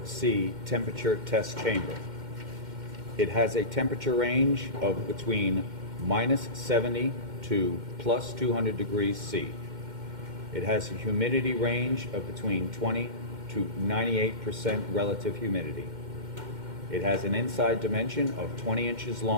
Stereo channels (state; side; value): late; left; 2.1 ms